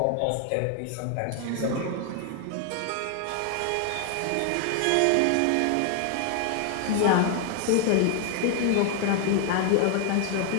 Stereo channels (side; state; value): both; different; correlation 0.00